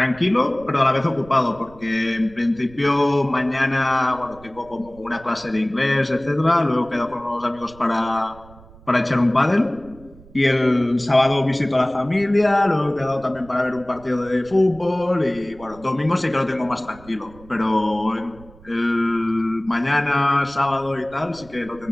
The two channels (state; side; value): noise; right; rumble, 23 dB below the sound